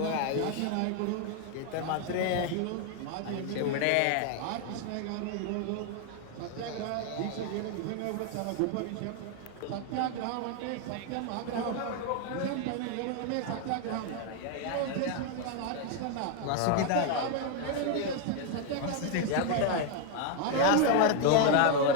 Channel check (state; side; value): different; both; correlation 0.01